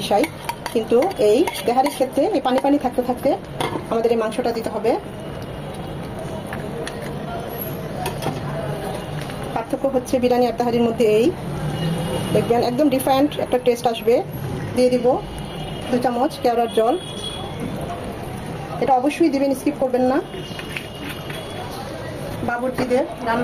কিন্তু এই তেহারির ক্ষেত্রে এই পানি পানি থাকতে থাকতে আমাদের এই মাংসটা দিতে হবে। পার্থক্য হচ্ছে বিরিয়ানি আর তেহারির মধ্যে এই, দেখবেন একদম ডিফারেন্ট একটা টেস্ট আসবে। দিয়ে দিব 2 চামচ কেওড়ার জল। এটা অবশ্যই দিবেন, স্কিপ করবেন না। বাবুর্চিদের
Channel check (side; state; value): both; identical; correlation 1.00